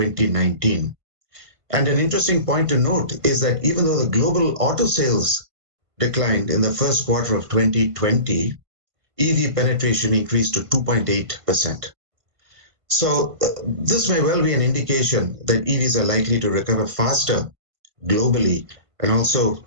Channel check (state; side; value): late; left; 1.5 ms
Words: And an interesting point to note is that even though the global auto sales declined in the first quarter of 2020, EV penetration increased to 2.8%. So this may well be an indication that EVs are likely to recover faster globally, and also